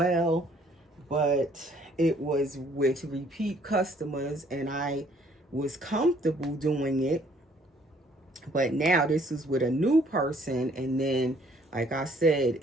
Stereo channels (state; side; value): normal; both; correlation 0.62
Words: but it was with repeat customers, and I was comfortable doing it. But now this is with a new person, and then, like I said,